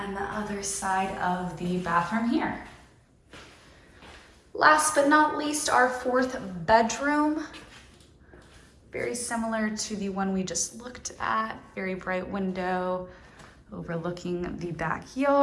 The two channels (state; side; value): identical; both; correlation 1.00